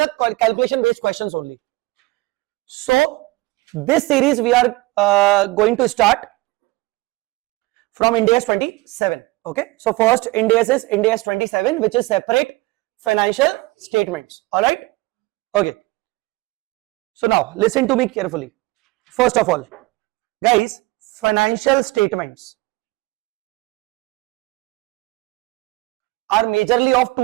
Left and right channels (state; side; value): quieter; left; 21.6 dB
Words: calculation based questions only. So this series we are going to start from Ind AS 27. Okay, so first Ind AS is Ind AS 27, which is separate financial statements. All right. Okay. So now listen to me carefully. First of all, guys, financial statements are majorly of